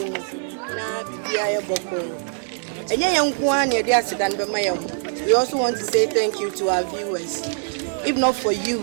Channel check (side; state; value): left; silent; digital silence